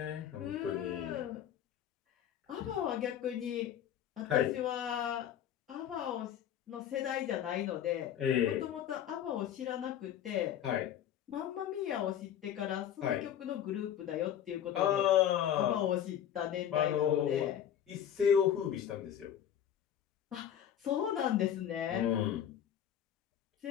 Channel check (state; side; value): quieter; right; 9.9 dB